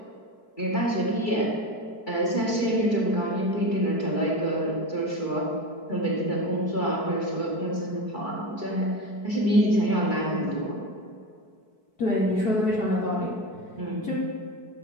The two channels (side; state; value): right; late; 4.6 ms